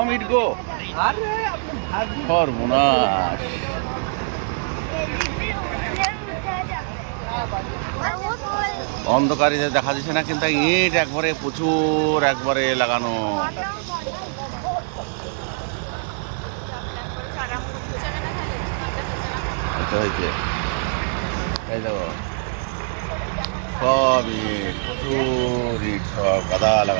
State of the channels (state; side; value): silent; left; digital silence